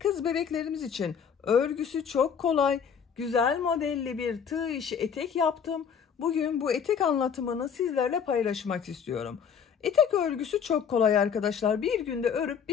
bebeklerimiz için örgüsü çok kolay, güzel modelli bir tığ işi etek yaptım. Bugün bu etek anlatımını sizlerle paylaşmak istiyorum. Etek örgüsü çok kolay arkadaşlar. Bir günde örüp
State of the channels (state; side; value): quieter; right; 7.2 dB